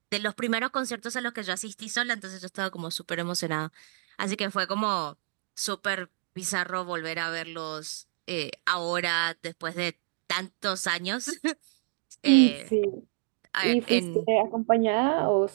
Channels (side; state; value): left; silent; digital silence